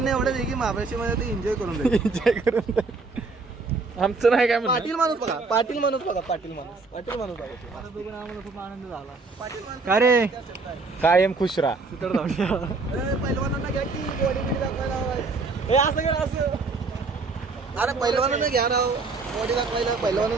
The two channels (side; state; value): left; quieter; 4.0 dB